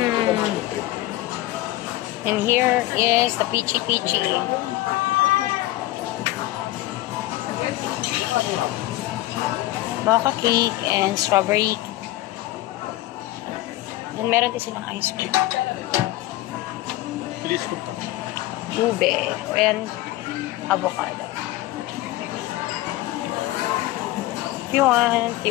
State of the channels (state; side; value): quieter; right; 17.1 dB